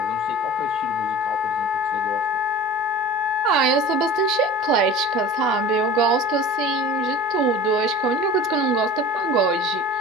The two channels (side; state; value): both; normal; correlation 0.38